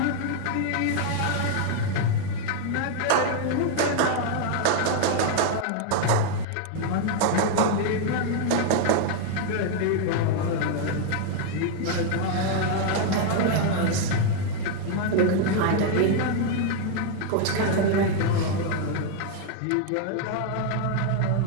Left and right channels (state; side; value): different; both; correlation 0.00